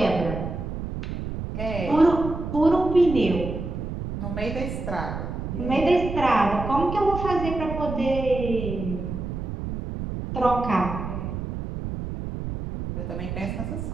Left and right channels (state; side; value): noise; right; rumble, 5 dB below the sound